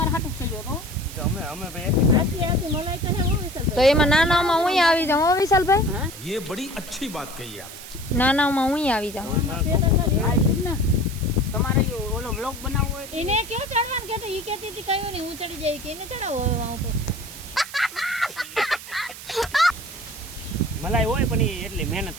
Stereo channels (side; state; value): right; noise; hiss, 14 dB below the sound